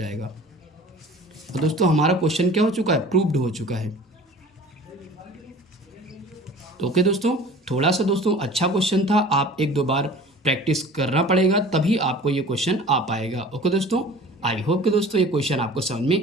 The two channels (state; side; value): normal; both; correlation 0.43